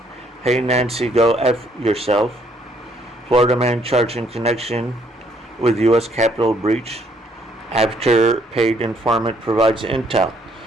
"Hey Nancy, go F yourself. Florida man charged in connection with U.S. Capitol breach after paid informant provides intel."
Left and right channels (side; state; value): both; normal; correlation 0.67